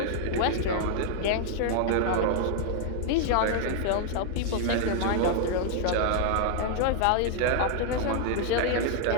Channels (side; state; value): both; different; correlation 0.00